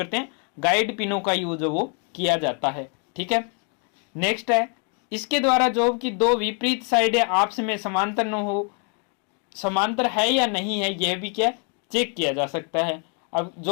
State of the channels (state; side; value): quieter; right; 39.5 dB